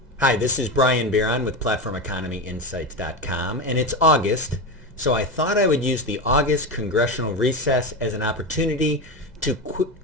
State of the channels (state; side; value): normal; both; correlation 0.18